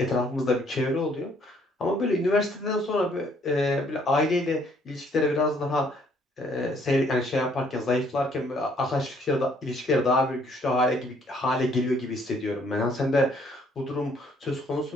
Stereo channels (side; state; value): both; normal; correlation 0.64